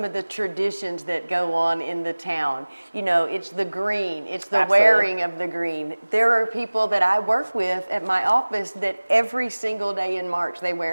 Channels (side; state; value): both; inverted; correlation -1.00